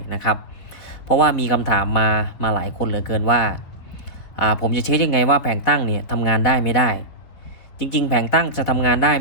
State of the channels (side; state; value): right; late; 4.4 ms